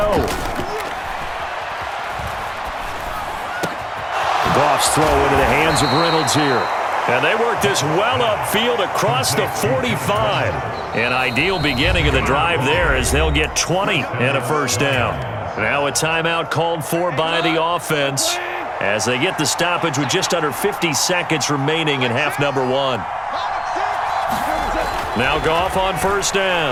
Goff's throw into the hands of Reynolds here. And they work this well upfield across the 45. An ideal beginning of the drive there as they'll get 20 and a 1st down. Now a timeout called for by the offense as they get the stoppage with just under 50 seconds remaining in half number 1. Now Goff on 1st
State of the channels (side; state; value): both; identical; correlation 1.00